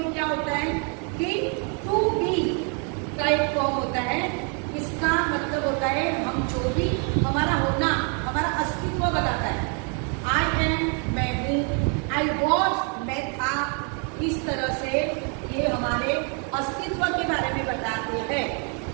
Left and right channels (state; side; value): quieter; left; 38.7 dB